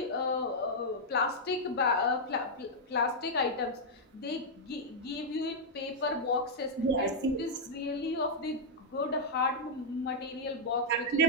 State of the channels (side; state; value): both; normal; correlation -0.05